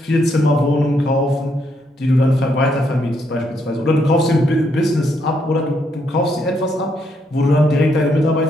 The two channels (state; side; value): normal; both; correlation 0.75